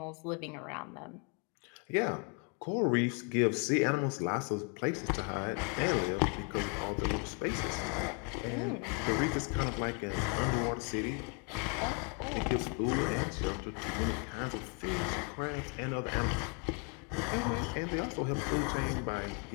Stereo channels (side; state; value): right; quieter; 36.9 dB